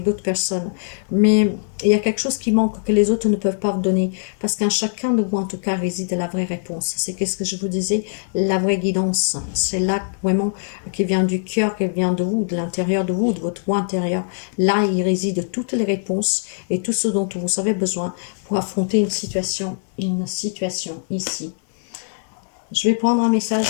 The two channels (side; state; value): right; silent; digital silence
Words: d'autres personnes. Mais il y a quelque chose qui manque que les autres ne peuvent pas vous donner. Parce qu'en chacun de vous, en tout cas, réside la vraie réponse. C'est qu'est-ce que je vous disais? La vraie guidance. C'est là vraiment qui vient du cœur, qui vient de vous, de l'intérieur de vous, de votre moi intérieur. Là, il réside toutes les réponses et tout ce dont vous avez besoin pour affronter une situation ici. Je vais prendre un message